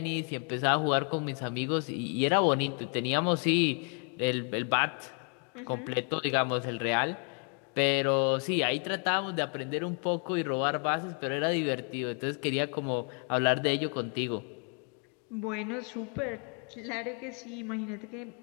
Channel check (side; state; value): right; quieter; 39.4 dB